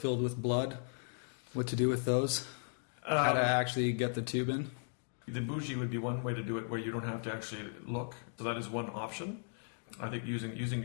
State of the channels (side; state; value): right; silent; digital silence